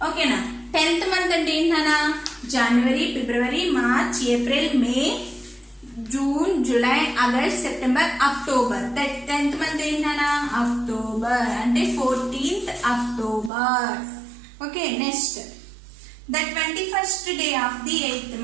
ఓకేనా? 10th మంత్ అంటే ఏంటన్నా? January, February, March, April, May, June, July, August, September, October. 10th month ఏంటన్నా? అక్టోబర్. అంటే 14th October. Okay. Next the 21st day of the 8th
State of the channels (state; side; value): drops out; left; at 13.5 s